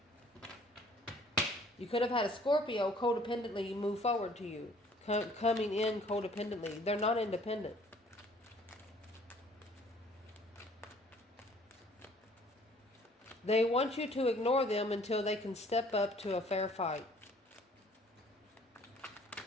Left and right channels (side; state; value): both; normal; correlation 0.57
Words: You could have had a Scorpio codependently move forward to you. Coming in codependently. They're not independent. They want you to ignore them until they can step up to a fair fight.